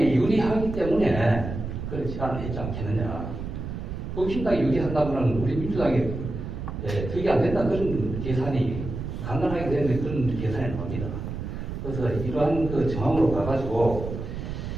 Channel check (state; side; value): noise; right; rumble, 6 dB below the sound